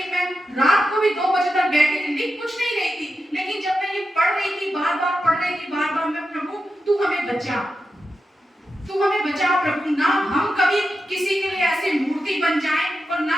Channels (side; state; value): both; normal; correlation 0.89